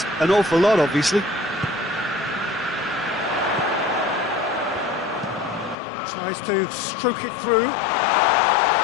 an awful lot, obviously. Tries to stroke it through.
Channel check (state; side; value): drops out; right; at 5.8 s